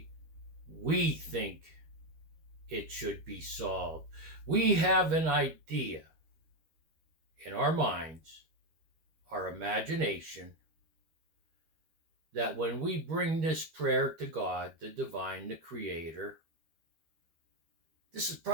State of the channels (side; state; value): left; late; 13 ms